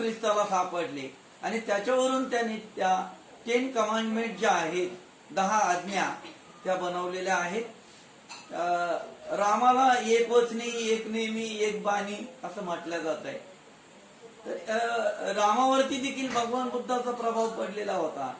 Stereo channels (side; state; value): both; identical; correlation 1.00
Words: सापडले आणि त्याच्यावरून त्यांनी त्या 10 कमांडमेंट ज्या आहेत, 10 आज्ञा त्या बनवलेल्या आहेत. रामाला एक वचनी, एक नेमी, एक बाणी असं म्हटलं जात आहे. तर रामावरती देखील भगवान बुद्धाचा प्रभाव पडलेला होता.